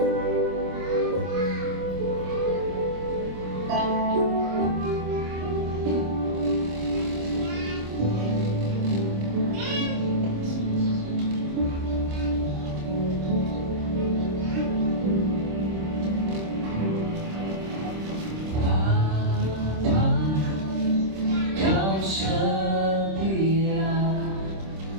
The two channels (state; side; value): late; left; 26 ms